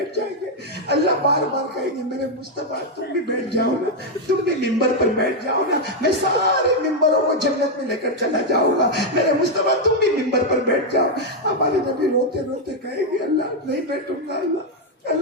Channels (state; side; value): normal; both; correlation 0.01